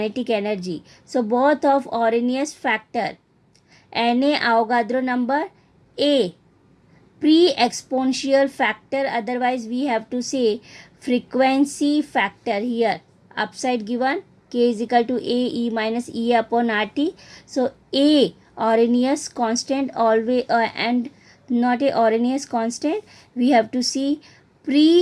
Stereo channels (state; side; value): identical; both; correlation 1.00